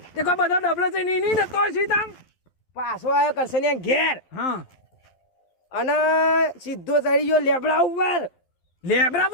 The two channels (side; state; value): right; late; 11 ms